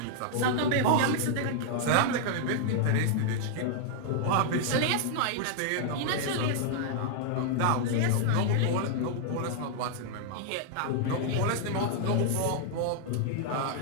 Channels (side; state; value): both; different; correlation -0.01